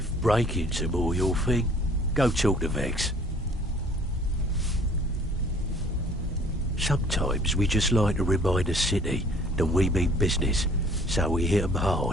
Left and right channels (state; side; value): normal; both; correlation 0.55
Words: break-ins are more your thing, go talk to Vex. Sometimes we just like to remind the city that we mean business, so we hit 'em